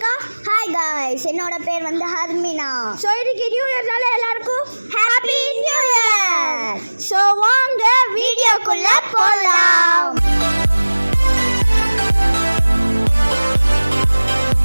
ஹாய் காய்ஸ், என்னோட பேர் வந்து ஹர்மினா. ஸோ இன்னைக்கு நியூ இயர்னால எல்லாருக்கும் ஹாப்பி நியூ இயர். ஸோ வாங்க வீடியோக்குள்ள போகலாம்.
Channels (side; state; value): both; inverted; correlation -1.00